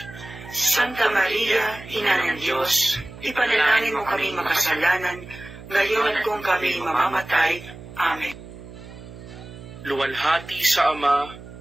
Santa Maria, Ina ng Diyos, ipanalangin mo kami makasalanan, ngayon at kung kami mamamatay. Amen. Luwalhati sa Ama,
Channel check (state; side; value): noise; right; hum, 15 dB below the sound